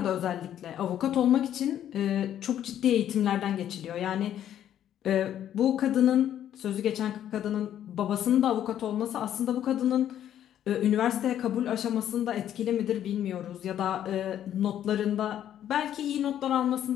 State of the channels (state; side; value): quieter; right; 10.8 dB